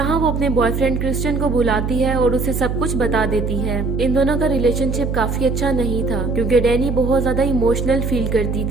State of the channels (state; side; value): noise; right; hum, 2 dB below the sound